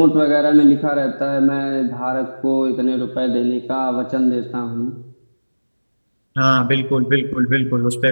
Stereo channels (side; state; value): both; inverted; correlation -1.00